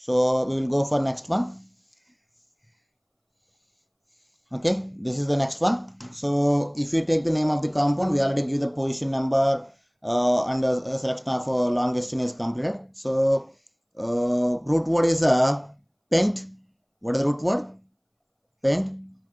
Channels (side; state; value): both; identical; correlation 1.00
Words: we will go for next one. Okay, this is the next one. So if you take the name of the compound, we already give the position number and a selection of longest chain is completed. So root word is pent. What is the root word? Pent.